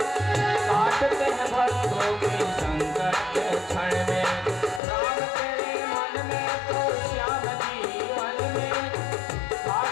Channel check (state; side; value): drops out; right; at 4.8 s